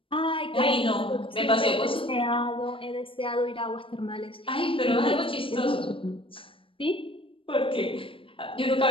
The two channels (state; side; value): late; right; 0.26 ms